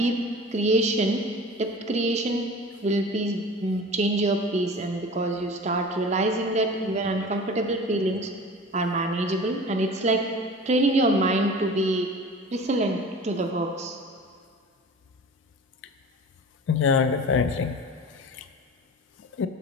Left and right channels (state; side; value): normal; both; correlation 0.38